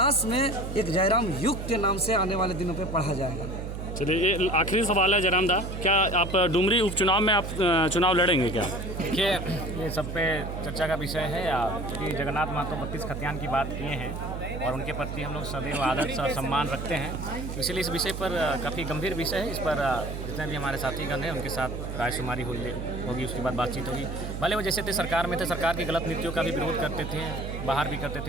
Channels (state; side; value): noise; right; hum, 6 dB below the sound